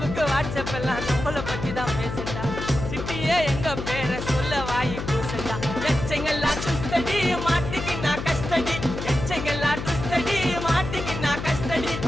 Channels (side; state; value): left; noise; hum, 6 dB below the sound